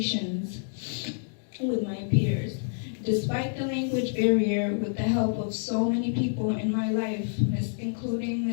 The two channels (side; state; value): right; silent; digital silence